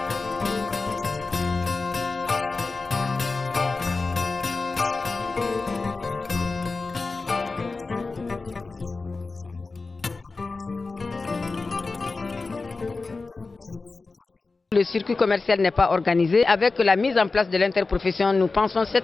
Le circuit commercial n'est pas organisé. Avec la mise en place de l'interprofession, nous pensons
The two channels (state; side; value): quieter; right; 3.9 dB